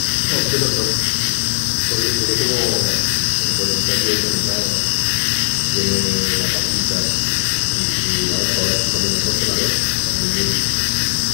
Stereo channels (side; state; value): right; silent; 63 dB below the other